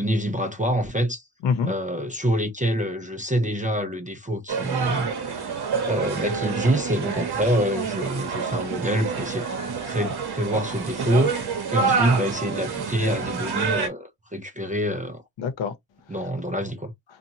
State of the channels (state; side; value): normal; both; correlation 0.43